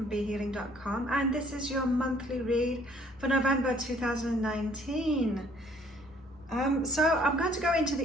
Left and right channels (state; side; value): normal; both; correlation 0.60